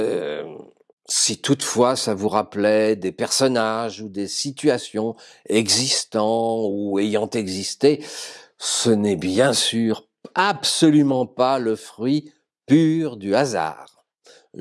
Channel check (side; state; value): both; identical; correlation 1.00